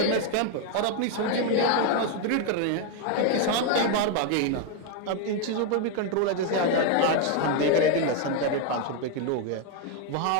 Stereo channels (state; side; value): different; both; correlation 0.01